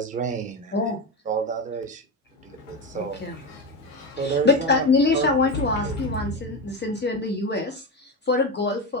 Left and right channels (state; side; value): normal; both; correlation 0.16